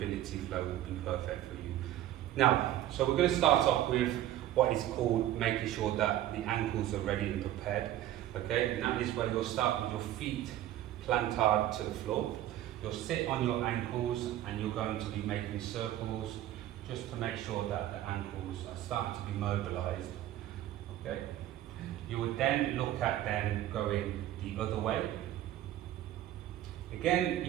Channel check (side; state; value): left; quieter; 13.2 dB